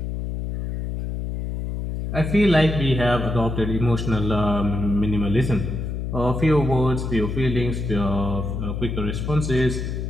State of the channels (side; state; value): left; noise; hum, 4 dB below the sound